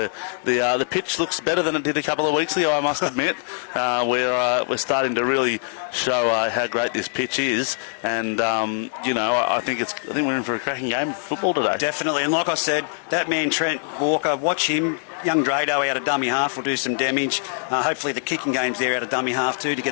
pitch looks better than it did a couple of weeks ago, I must admit. We're starting to really show how great this pitch is, and I think we're in for a cracking game of football today. Definitely, and like I said, that man Trent Walker, watch him. Young Drado out of dummy half will do some damage. Hopefully the kicking game's there out of dummy half too to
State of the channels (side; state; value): right; silent; digital silence